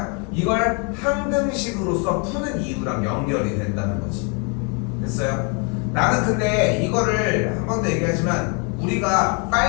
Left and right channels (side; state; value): right; quieter; 35.2 dB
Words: 이걸 항등식으로서 푸는 이유랑 연결이 된다는 거지. 됐어요? 나는 근데 이거를 한 번 더 얘기하지만 우리가